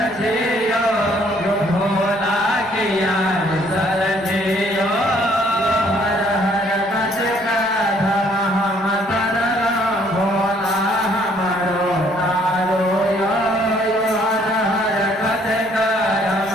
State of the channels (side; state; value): both; normal; correlation 0.64